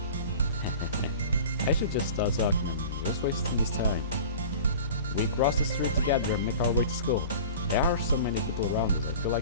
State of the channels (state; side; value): inverted; both; correlation -0.39